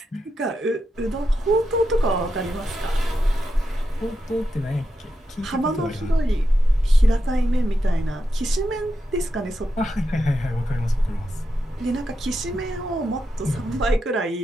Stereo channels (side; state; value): both; normal; correlation 0.86